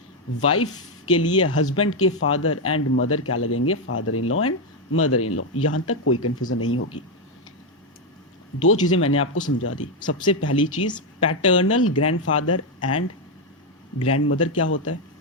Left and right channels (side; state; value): both; normal; correlation 0.04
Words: वाइफ के लिए हस्बैंड के फादर एंड मदर क्या लगेंगे? Father in law and mother in law. यहां तक कोई कंफ्यूजन नहीं होगी। दो चीजें मैंने आपको समझा दी। सबसे पहली चीज, पैटर्नल ग्रैंडफादर एंड ग्रैंडमदर क्या होता है,